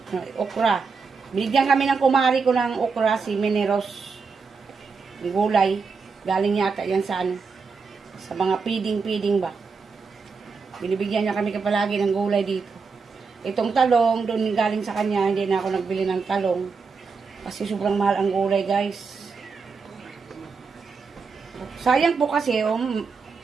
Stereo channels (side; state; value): left; quieter; 5.0 dB